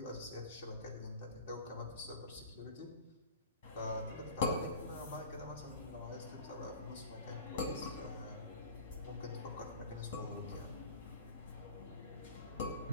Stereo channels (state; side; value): inverted; both; correlation -0.38